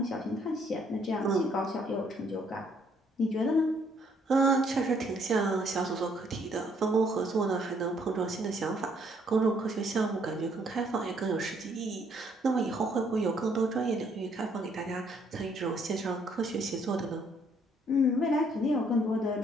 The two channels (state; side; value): normal; both; correlation 0.67